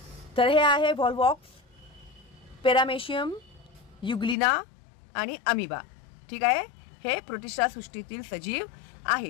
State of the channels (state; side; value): drops out; right; at 4.4 s